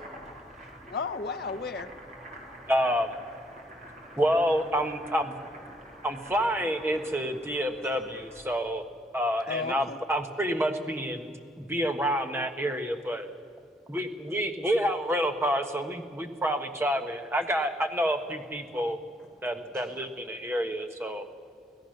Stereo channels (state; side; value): normal; both; correlation 0.68